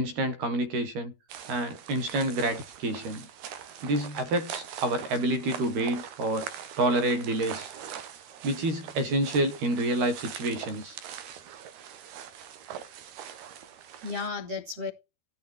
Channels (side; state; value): left; late; 13 ms